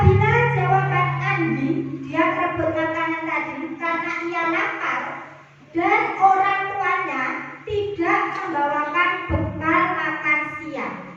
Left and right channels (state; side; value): identical; both; correlation 1.00